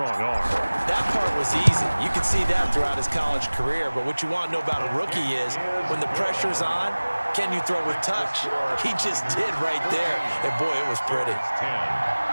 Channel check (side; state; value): both; inverted; correlation -1.00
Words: arm. That part was easy. You could see that throughout his college career. But what you want to know about a rookie is when the pressure's on, can you throw with touch? He just did right there. And, boy, it was pretty. 10.